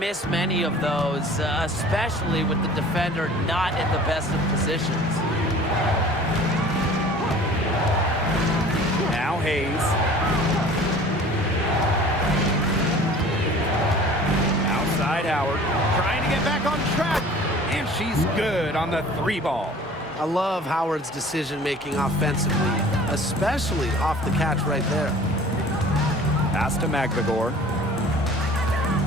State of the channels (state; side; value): normal; both; correlation 0.46